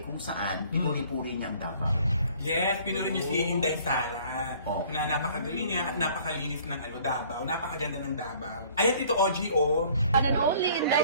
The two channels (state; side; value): inverted; both; correlation -0.54